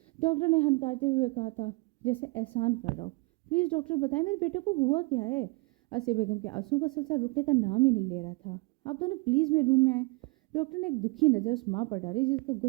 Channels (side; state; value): left; quieter; 26.7 dB